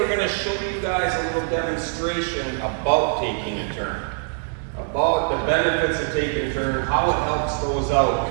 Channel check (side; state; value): left; silent; digital silence